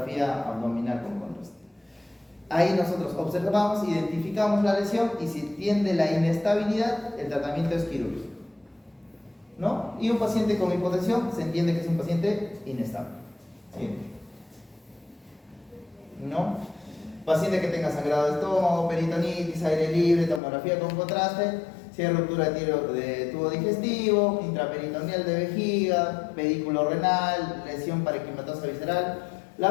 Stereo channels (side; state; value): right; drops out; at 20.4 s